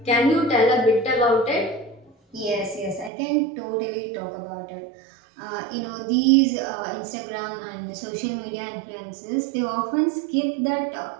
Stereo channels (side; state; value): left; drops out; at 3.1 s